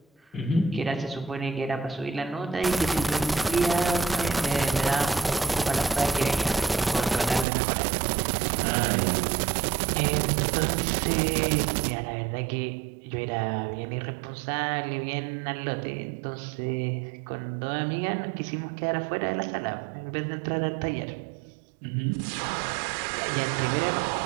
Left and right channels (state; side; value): drops out; left; at 7.5 s